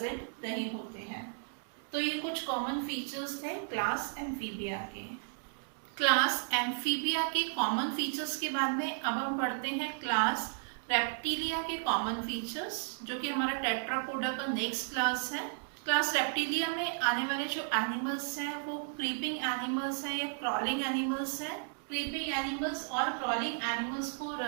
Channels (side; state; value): left; silent; 55 dB below the other